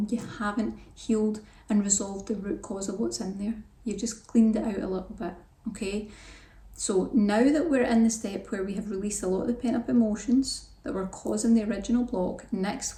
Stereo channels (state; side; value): identical; both; correlation 1.00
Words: You haven't healed and resolved the root cause of what's in there. You've just cleaned it out a little bit, okay? So now that we're in the step where we have released a lot of the pent up emotions that were causing the original block,